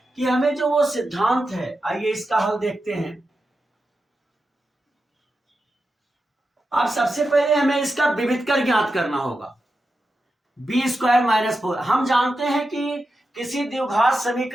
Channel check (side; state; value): both; normal; correlation 0.90